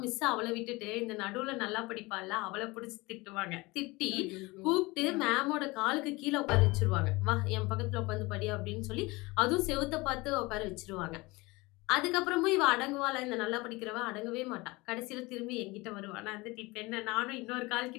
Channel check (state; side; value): quieter; right; 23.1 dB